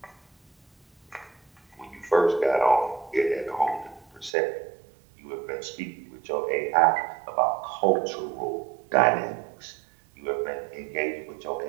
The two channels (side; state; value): left; drops out; at 4.3 s